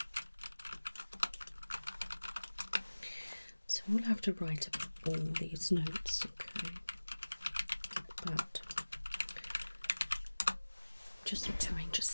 So we'll have to write up all these notes, okay? But just need to arrange a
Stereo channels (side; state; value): both; inverted; correlation -1.00